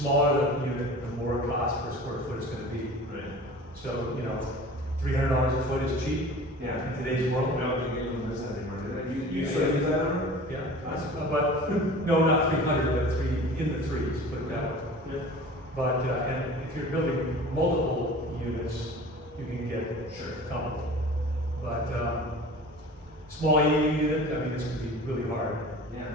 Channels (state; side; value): normal; both; correlation 0.40